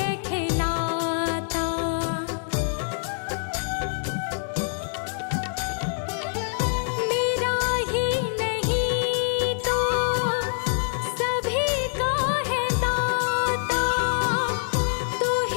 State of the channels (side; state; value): right; silent; digital silence